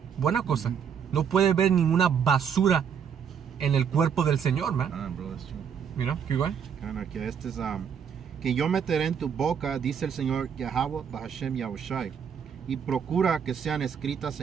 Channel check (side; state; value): left; quieter; 7.5 dB